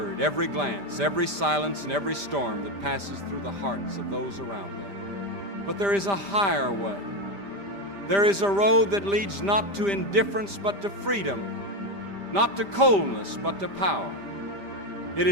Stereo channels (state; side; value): late; left; 5.0 ms